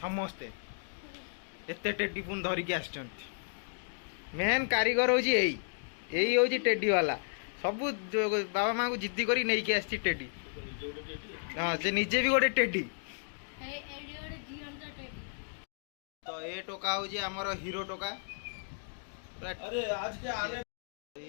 एते टेडी पुन धरिकी आछंती मेन कारीगर हूँ यही हूँ टेडी वाला सब बाबा माँ को जिद्दी करी नहीं के आसी टेडी हाँ से निजे भी गोटे टेडी तो ये टोका हूँ आमर हीरो टोका अरे आज के आने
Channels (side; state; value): right; silent; digital silence